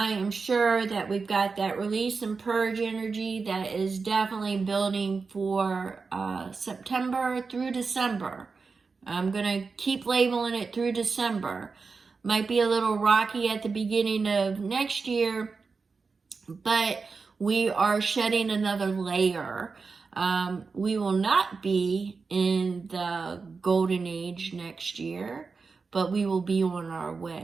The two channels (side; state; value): left; quieter; 4.7 dB